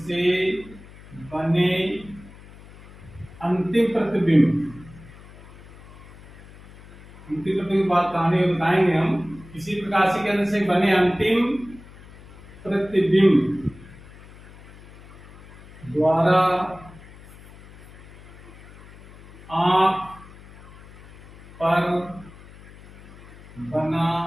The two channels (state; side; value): noise; left; hum, 20 dB below the sound